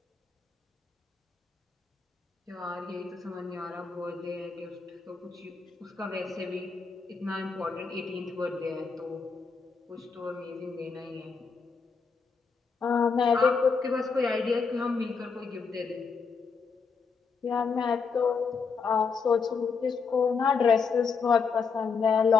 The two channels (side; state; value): right; quieter; 5.2 dB